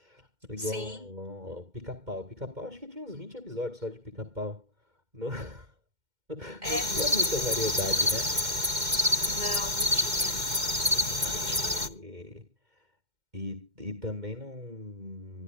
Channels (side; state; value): left; late; 2.1 ms